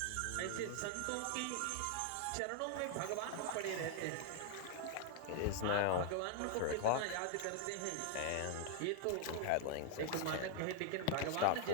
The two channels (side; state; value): both; different; correlation 0.00